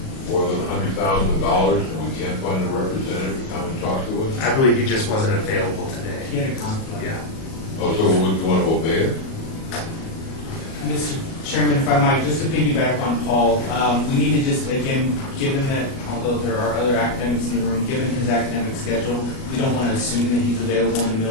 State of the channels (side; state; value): right; late; 37 ms